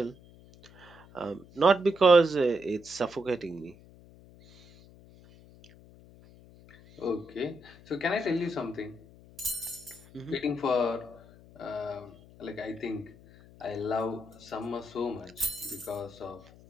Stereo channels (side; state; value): left; noise; hum, 22 dB below the sound